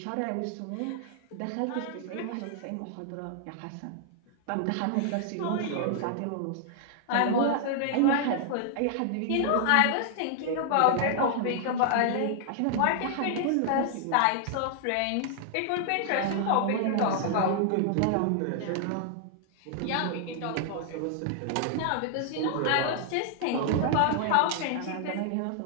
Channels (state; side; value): different; both; correlation -0.01